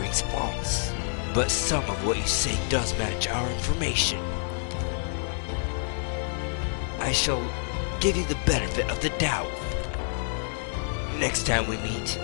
false, but some of what you say does match our information. I shall give you the benefit of the doubt. Next time we meet,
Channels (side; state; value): right; silent; digital silence